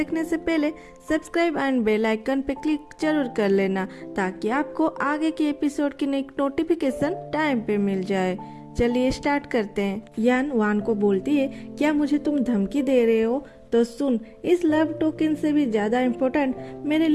से पहले सब्सक्राइब एंड बेल आइकन पे क्लिक जरूर कर लेना ताकि आपको आगे के एपिसोड की नई नोटिफिकेशन टाइम पे मिल जाए। चलिए स्टार्ट करते हैं। यान वान को बोलती है, क्या मुझे तुम धमकी दे रहे हो? तो सुन, इस लव टोकन से भी ज्यादा इम्पोर्टेंट मेरे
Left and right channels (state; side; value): identical; both; correlation 1.00